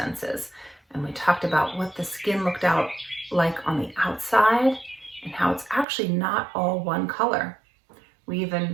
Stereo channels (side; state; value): left; drops out; at 5.9 s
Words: And we talked about what the skin looked out like on the outside and how it's actually not all one color. We